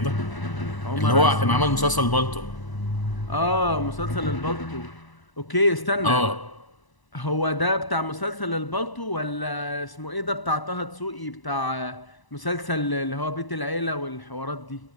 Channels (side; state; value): right; late; 1.0 ms